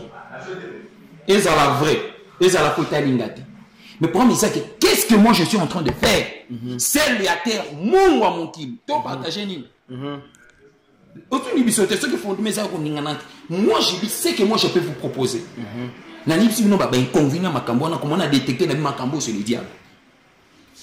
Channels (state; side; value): identical; both; correlation 1.00